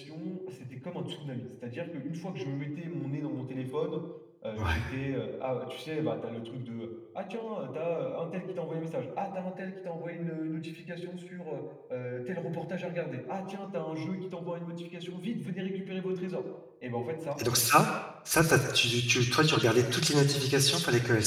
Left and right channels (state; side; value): identical; both; correlation 1.00